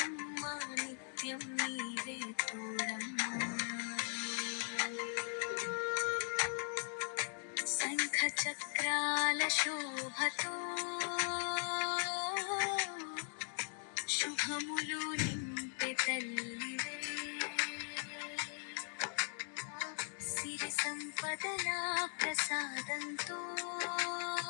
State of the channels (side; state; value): right; silent; 52 dB below the other